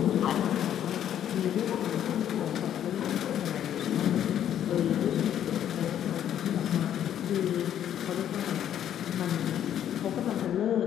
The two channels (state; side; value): quieter; right; 10.4 dB